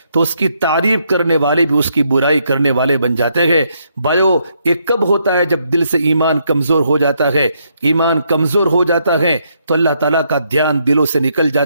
تو اس کی تعریف کرنے والے بھی اس کی برائی کرنے والے بن جاتے ہیں۔ بھائیو، یہ کب ہوتا ہے؟ جب دل سے ایمان کمزور ہو جاتا ہے۔ ایمان کمزور ہو جاتا ہے تو اللہ تعالیٰ کا دھیان دلوں سے نکل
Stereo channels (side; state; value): both; inverted; correlation -0.75